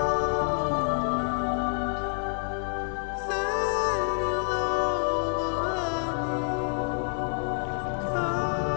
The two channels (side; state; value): right; silent; 56 dB below the other